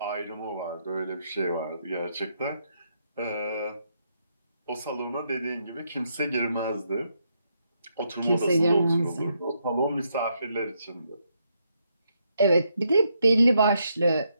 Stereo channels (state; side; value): inverted; both; correlation -0.78